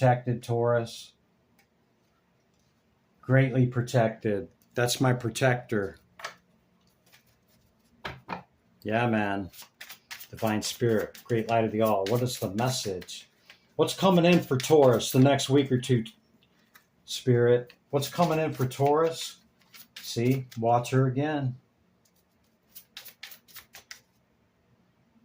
Taurus. Greatly protected. That's my protector. Yeah, man. Divine Spirit, Great Light of the All. What is the message? What's coming in for Taurus the next week or two, Spirit? What's coming in for Taurus? See, watch her again.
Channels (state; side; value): identical; both; correlation 1.00